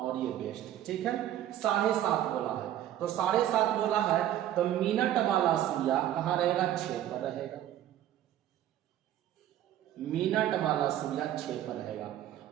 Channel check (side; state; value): left; quieter; 12.0 dB